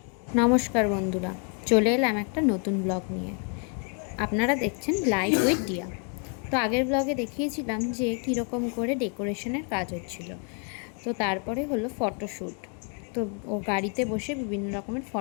নমস্কার বন্ধুরা, চলে এলাম একটা নতুন ব্লগ নিয়ে। আপনারা দেখছেন লাইফ উইথ ডিয়া। তো আগের ব্লগে দেখিয়েছিলাম যে কীরকম করে ডেকোরেশনের কাজ হচ্ছিল। তো তারপরে হলো ফটোশ্যুট। তো ও গাড়িতে বসে বিভিন্ন রকমের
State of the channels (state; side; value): quieter; right; 38.7 dB